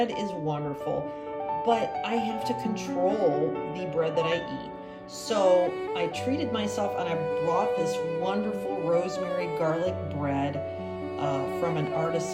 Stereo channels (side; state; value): both; identical; correlation 1.00